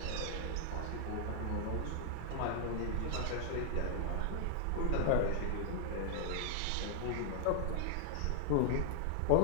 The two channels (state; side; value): different; both; correlation 0.00